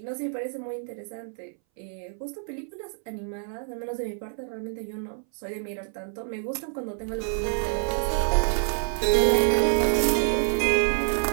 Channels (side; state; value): left; silent; 59 dB below the other